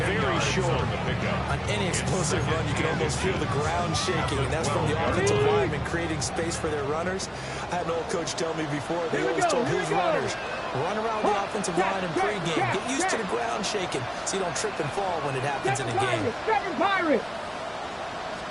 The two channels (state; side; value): identical; both; correlation 1.00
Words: short. On any explosive run, you can almost feel the ground shaking, and that's from the offensive linemen creating space for their runners. I had an old coach tell me before, they always told his runners, run around the offensive line in pregame. Get used to the ground shaking so you don't trip and fall when it happens in a game. Second Pirate.